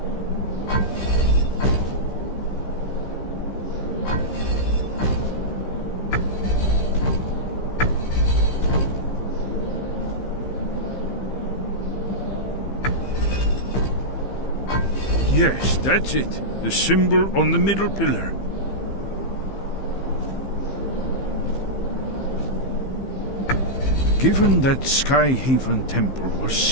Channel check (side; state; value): right; late; 15 ms